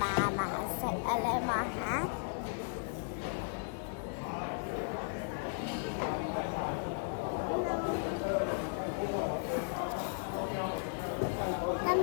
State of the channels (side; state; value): right; silent; digital silence